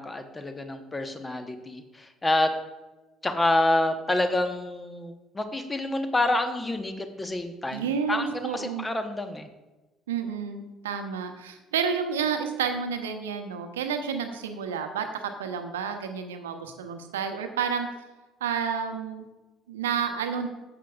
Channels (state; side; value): normal; both; correlation 0.49